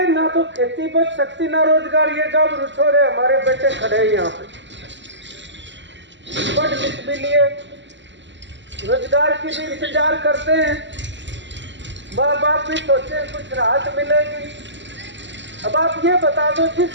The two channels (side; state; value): left; late; 0.53 ms